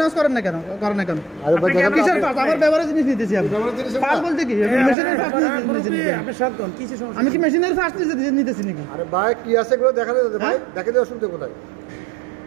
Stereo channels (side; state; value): left; drops out; at 5.0 s